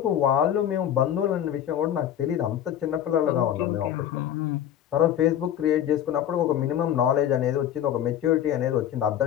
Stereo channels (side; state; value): right; quieter; 10.6 dB